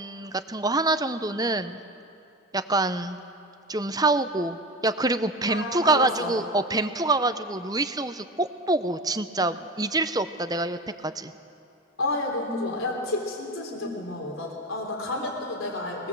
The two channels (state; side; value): normal; both; correlation 0.27